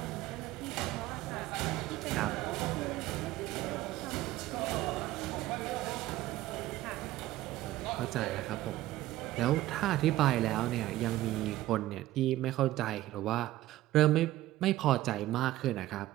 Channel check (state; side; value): quieter; left; 15.5 dB